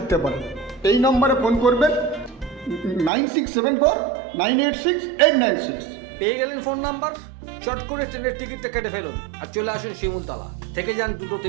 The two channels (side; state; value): left; drops out; at 3.1 s